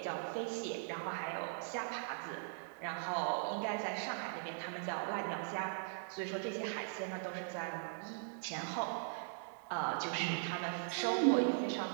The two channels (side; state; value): left; silent; digital silence